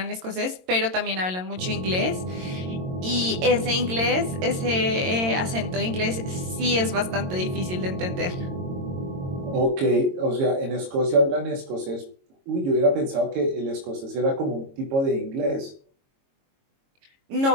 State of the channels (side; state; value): left; late; 22 ms